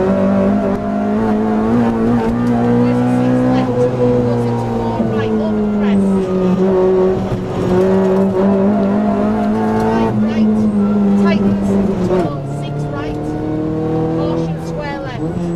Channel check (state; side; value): identical; both; correlation 1.00